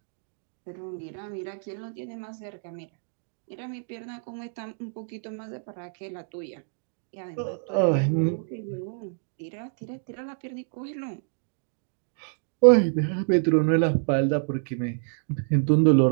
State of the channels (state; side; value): silent; left; digital silence